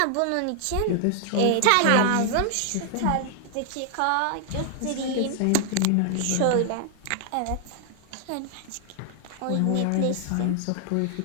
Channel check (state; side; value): different; both; correlation 0.00